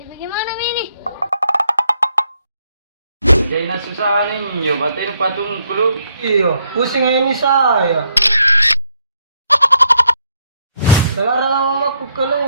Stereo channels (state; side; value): inverted; both; correlation -0.73